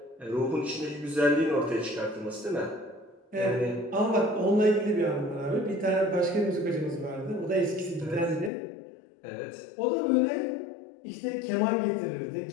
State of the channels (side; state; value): right; drops out; at 8.5 s